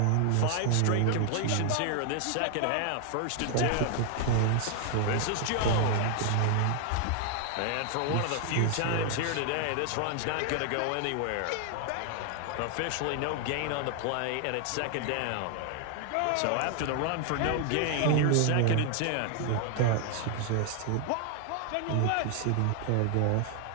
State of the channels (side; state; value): both; different; correlation 0.00